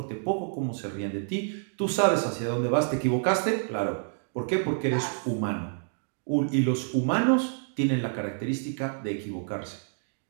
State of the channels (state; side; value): silent; left; digital silence